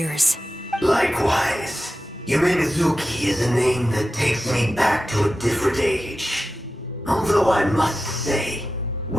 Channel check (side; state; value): both; normal; correlation 0.92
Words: Likewise, Yume Mizuki is a name that takes me back to a different age. Although I must say,